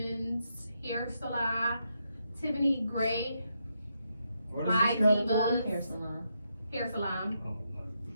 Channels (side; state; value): both; inverted; correlation -0.81